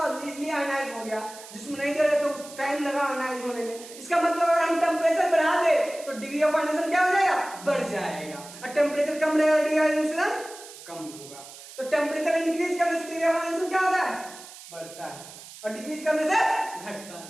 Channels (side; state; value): right; noise; hiss, 16 dB below the sound